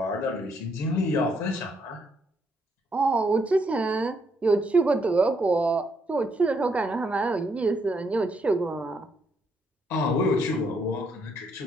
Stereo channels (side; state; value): both; normal; correlation 0.74